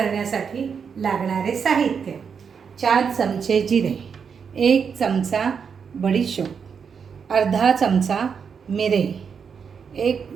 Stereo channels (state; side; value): quieter; left; 6.5 dB